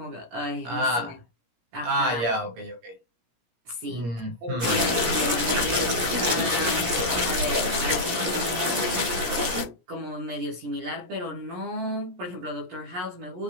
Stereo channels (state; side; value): late; left; 17 ms